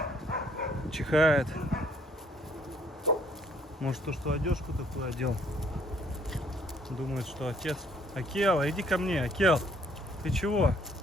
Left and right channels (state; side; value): normal; both; correlation 0.64